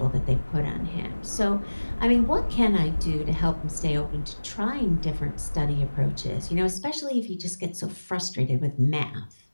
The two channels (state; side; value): inverted; both; correlation -1.00